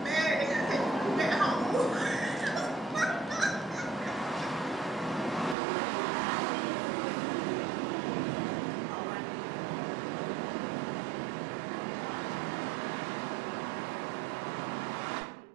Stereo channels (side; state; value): left; drops out; at 5.6 s